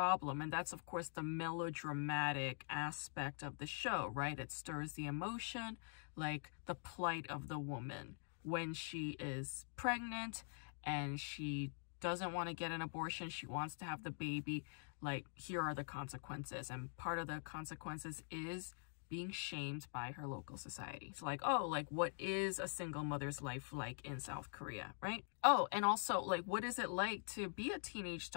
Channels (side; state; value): right; silent; digital silence